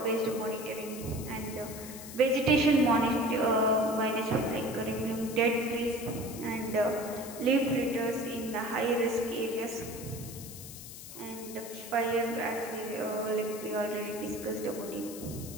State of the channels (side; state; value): left; noise; hiss, 13 dB below the sound